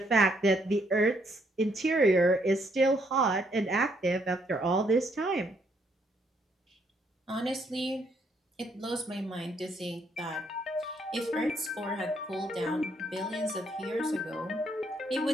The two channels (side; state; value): both; normal; correlation 0.71